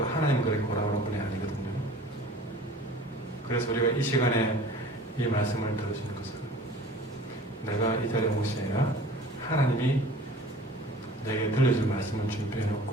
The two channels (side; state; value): both; normal; correlation 0.44